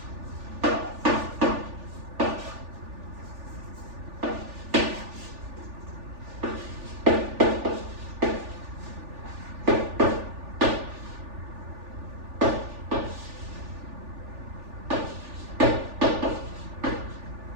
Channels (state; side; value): late; left; 3.4 ms